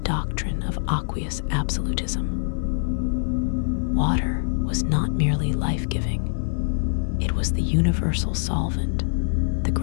of aqueous absolutism. Water was not merely life-giving, it was the universal solvent, the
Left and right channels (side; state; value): right; silent; digital silence